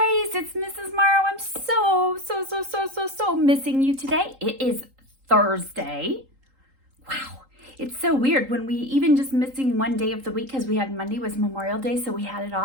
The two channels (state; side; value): late; left; 3.8 ms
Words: it's Mrs. Morrow. I'm so missing you today. It is Thursday. Wow, it's so weird when we even just missing one day of the week because we had Monday was Memorial Day, so we had it